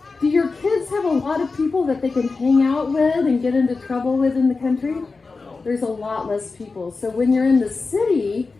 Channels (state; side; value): quieter; right; 4.1 dB